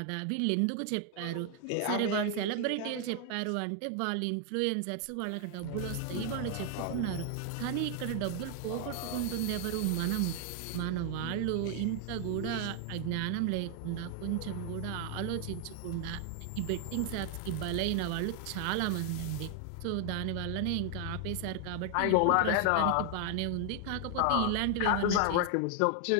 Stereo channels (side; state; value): both; different; correlation 0.00